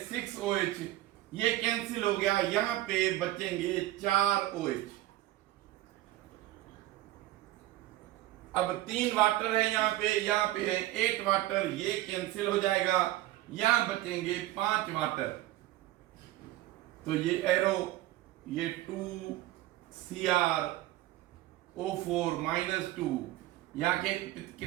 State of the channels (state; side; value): quieter; left; 16.0 dB